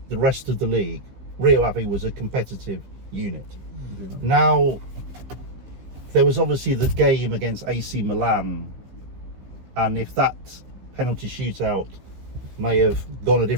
the rest of the league, Rio Ave was a competitive unit. Yeah. Now, there was obviously the game against AC Milan, and if that penalty shootout may have gone a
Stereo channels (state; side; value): late; left; 15 ms